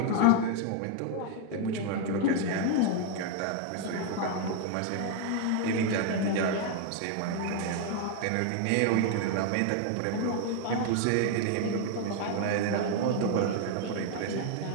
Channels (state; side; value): different; both; correlation 0.00